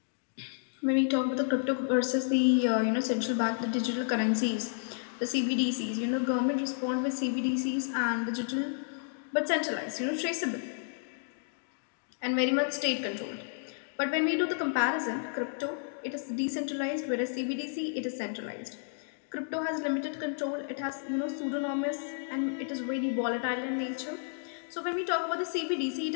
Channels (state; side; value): silent; right; digital silence